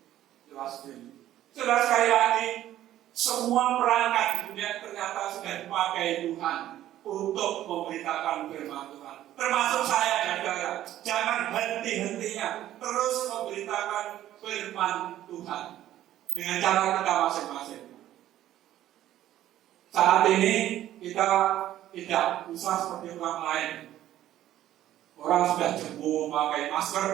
Sudah sekali lagi, semua perangkat di dunia ternyata sudah dipakai Tuhan untuk memberitakan firman Tuhan. Termasuk saya dan saudara. Jangan hakimnya terus memberitakan firman Tuhan dengan cara kita masing-masing. Saat ini kita tidak usah seperti orang lain. Orang sudah jemur memakai masker,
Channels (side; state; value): left; quieter; 13.0 dB